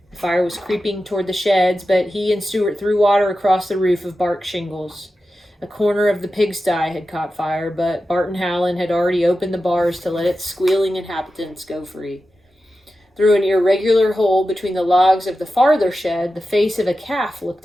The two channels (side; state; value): both; normal; correlation 0.92